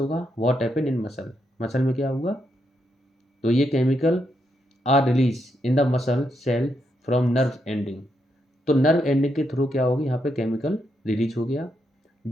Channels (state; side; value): normal; both; correlation 0.80